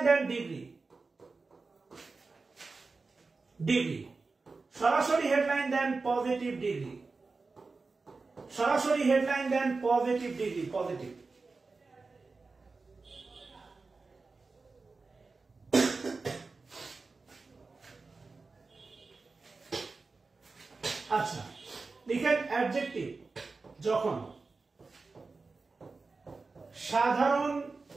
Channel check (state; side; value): quieter; left; 4.0 dB